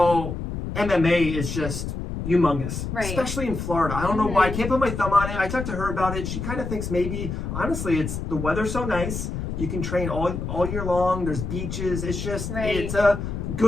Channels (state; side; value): noise; left; rumble, 5 dB below the sound